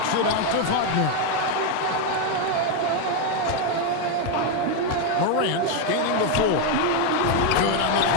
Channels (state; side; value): different; both; correlation 0.02